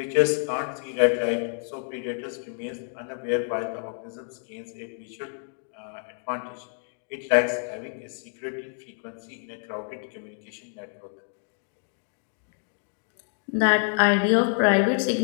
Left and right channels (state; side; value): silent; right; 57 dB below the other